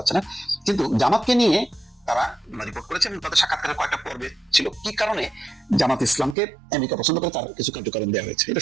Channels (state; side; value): drops out; left; at 6.4 s